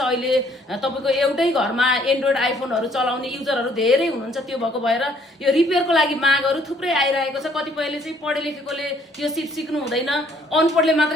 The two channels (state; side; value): normal; both; correlation 0.63